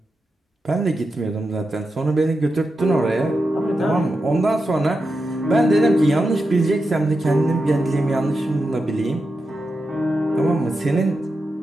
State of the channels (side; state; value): both; normal; correlation 0.89